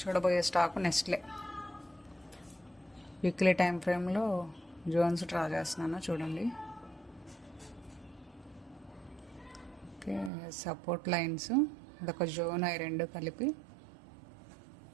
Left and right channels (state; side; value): drops out; left; at 10.3 s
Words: స్టాక్ నెస్ట్లే. వీక్లీ టైం ఫ్రేమ్లో జోన్స్ డ్రా చేస్తున్నాను, చూడండి. ఓకే, సపోర్ట్ లైన్స్, అదొక జోన్, అవి రెండు కలిపి.